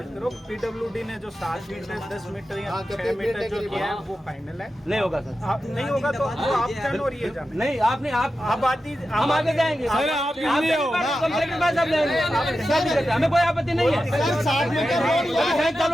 करो। पीडब्ल्यूडी ने जो 7 मीटर 10 मीटर या 6 मीटर जो किया है वो फाइनल है। नहीं होगा सर, आप नहीं होगा तो वो आप जानो और ये जानो। नहीं आपने आप आबादी हम आगे जाएंगे, कंपनी के पास आप जाएंगे, हमें कोई आपत्ति नहीं है। 7 मीटर रोड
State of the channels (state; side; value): normal; both; correlation 0.91